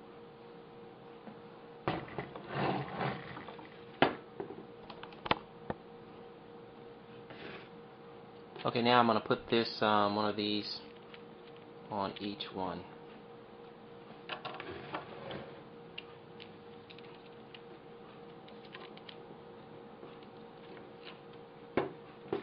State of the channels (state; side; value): identical; both; correlation 1.00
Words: Okay, now I'm going to put this one of these on each one.